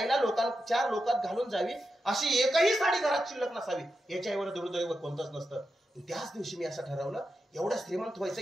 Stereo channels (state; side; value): normal; both; correlation 0.88